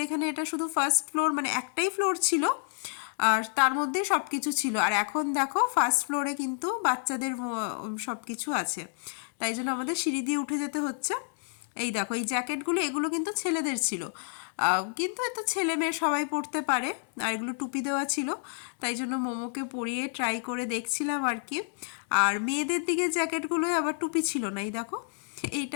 এখানে এটা শুধু ফার্স্ট ফ্লোর, মানে একটাই ফ্লোর ছিল, আর তার মধ্যেই সব কিছু ছিল। আর এখন দেখো ফার্স্ট ফ্লোরে কিন্তু বাচ্চাদের সব কিছু আছে, তাই জন্য আমাদের সিঁড়ি দিয়ে উঠে যেতে হচ্ছে। এই দেখো এই জ্যাকেটগুলো এগুলো কিন্তু ছেলেদের ছিল, কিন্তু এ তো ছেলে মেয়ে সবাই পরতে পারে, আর এগুলো টুপি দেওয়া ছিল, তাই জন্য মোমোকে পরিয়ে ট্রাই করে দেখছিলাম আর কি। আর মেয়েদের দিকে জ্যাকেটগুলোয় আবার টুপি ছিল না, এই দেখো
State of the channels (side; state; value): right; silent; 58 dB below the other